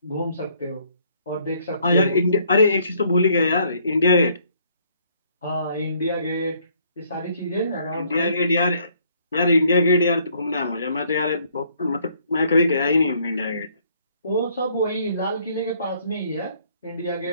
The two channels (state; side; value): inverted; both; correlation -0.65